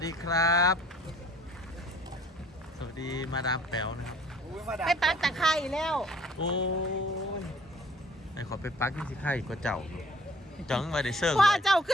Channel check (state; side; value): normal; both; correlation 0.55